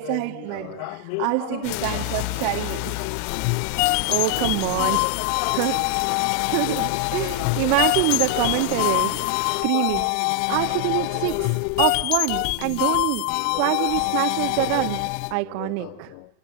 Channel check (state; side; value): different; both; correlation 0.00